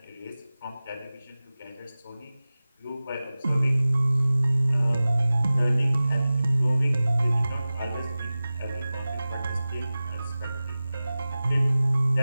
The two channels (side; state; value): both; inverted; correlation -0.97